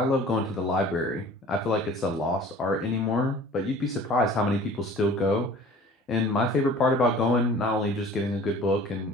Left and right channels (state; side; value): normal; both; correlation 0.46